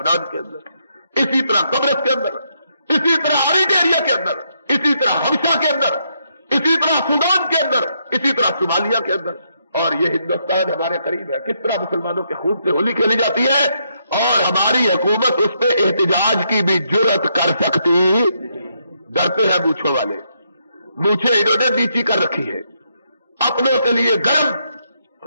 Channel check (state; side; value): inverted; both; correlation -0.77